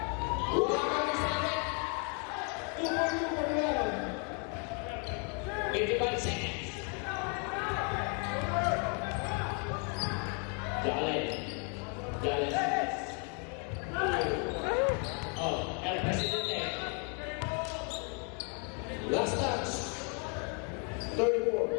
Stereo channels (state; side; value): quieter; right; 38.0 dB